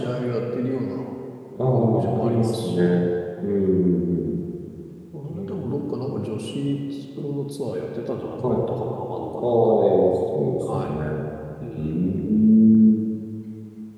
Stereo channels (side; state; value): both; identical; correlation 1.00